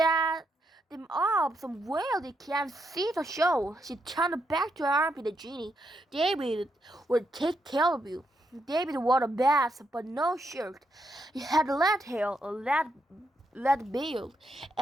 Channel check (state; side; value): normal; both; correlation 0.80